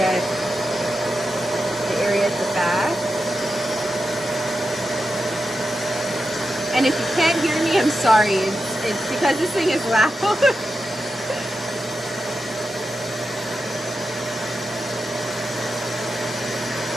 the area at the back. And if you can't hear me, I'm sorry. It's because this thing is loud.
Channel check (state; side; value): normal; both; correlation 0.89